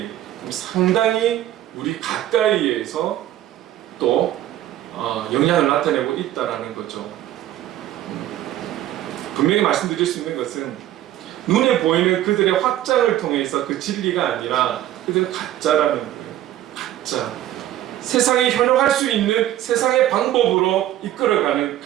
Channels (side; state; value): left; quieter; 13.1 dB